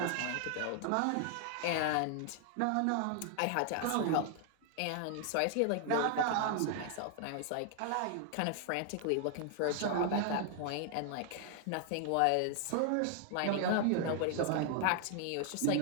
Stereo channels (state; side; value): different; both; correlation 0.00